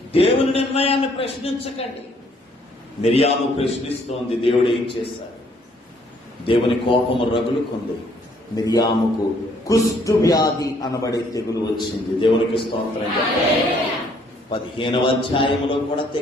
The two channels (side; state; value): both; normal; correlation 0.65